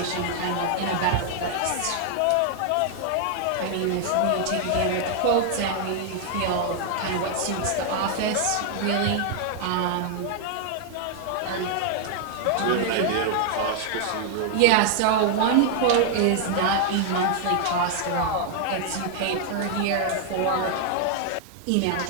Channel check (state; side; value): different; both; correlation 0.00